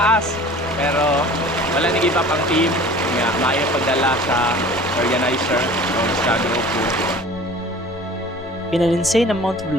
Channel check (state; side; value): normal; both; correlation 0.44